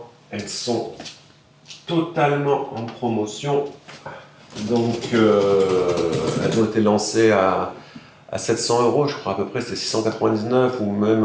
elles sont totalement en promotion. Donc elles ont été lancées à 700 €, je crois à peu près, c'était 699 ou même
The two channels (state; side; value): identical; both; correlation 1.00